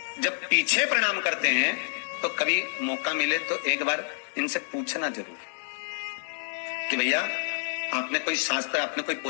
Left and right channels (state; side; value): silent; right; digital silence